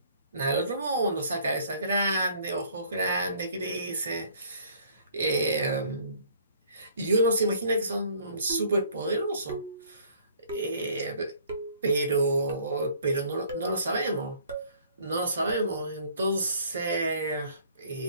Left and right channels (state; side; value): inverted; both; correlation -0.56